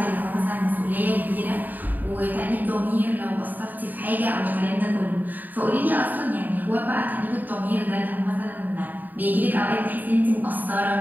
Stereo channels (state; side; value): late; left; 0.087 ms